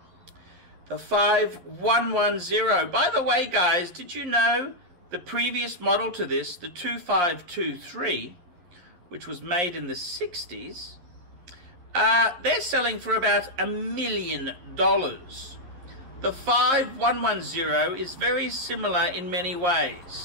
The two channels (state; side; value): late; left; 11 ms